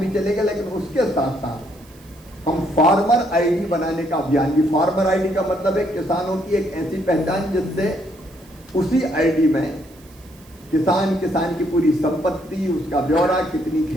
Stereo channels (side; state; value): right; noise; hiss, 26 dB below the sound